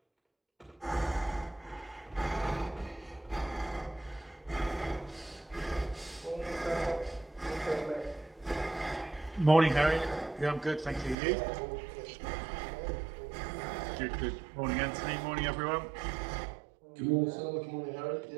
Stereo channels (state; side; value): drops out; left; at 11.2 s